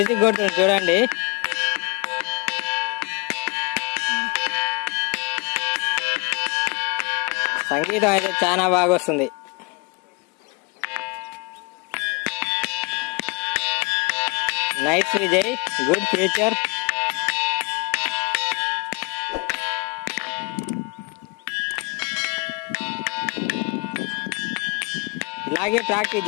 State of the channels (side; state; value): right; quieter; 28.8 dB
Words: కొడుతుండు చూడండి. సంగీతం అయితే చాలా బాగా వస్తుంది. Nice Vijay, good future. ఇలాగే ప్రాక్టీస్